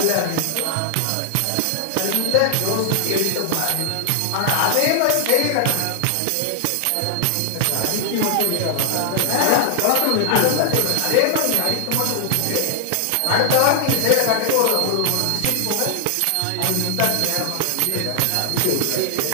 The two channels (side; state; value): both; different; correlation 0.00